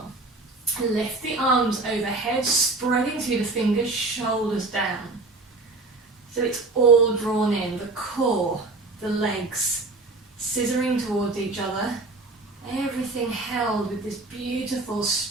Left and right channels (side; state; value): left; quieter; 3.3 dB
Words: Lift the arms overhead, spreading through the fingers, shoulders down. So it's all drawn in, the core, the legs, scissoring towards each other. Everything held with this beautiful,